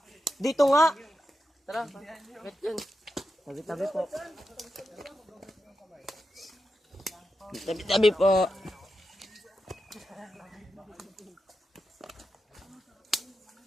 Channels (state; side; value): normal; both; correlation 0.89